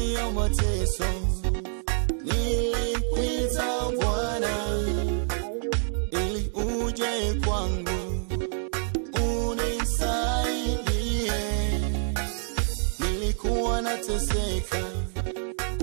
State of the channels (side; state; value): left; silent; digital silence